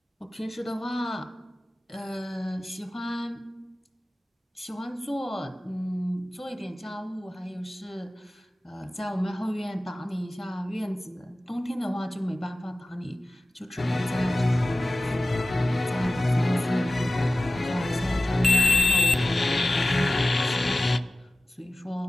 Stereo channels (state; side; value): normal; both; correlation 0.96